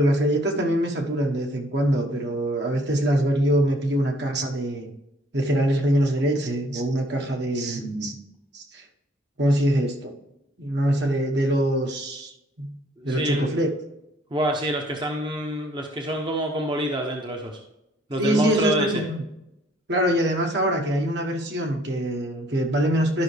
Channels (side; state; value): both; normal; correlation 0.62